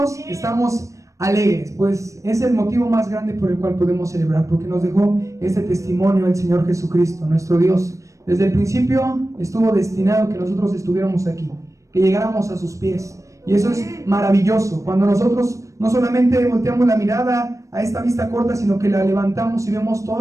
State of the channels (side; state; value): left; late; 0.15 ms